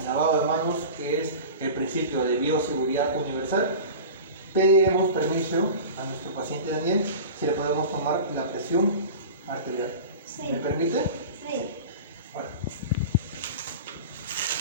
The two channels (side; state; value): both; inverted; correlation -0.34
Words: lavado de manos, que es el principio de bioseguridad universal, pediremos permiso a nuestro paciente Daniel si le podemos tomar la presión arterial. Sí. ¿Me permite? Sí. Bueno.